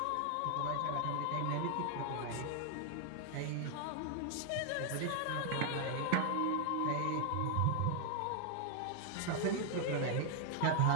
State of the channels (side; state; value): both; different; correlation 0.00